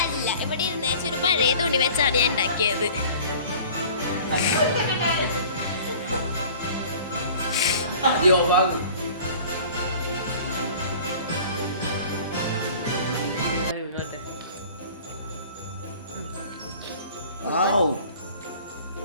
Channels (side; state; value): both; inverted; correlation -0.46